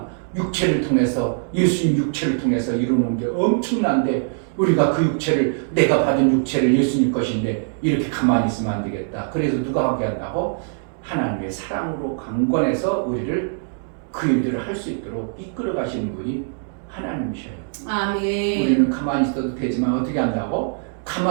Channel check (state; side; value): silent; left; 64 dB below the other